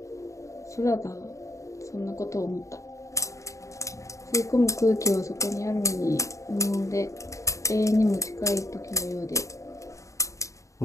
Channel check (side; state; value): right; late; 0.15 ms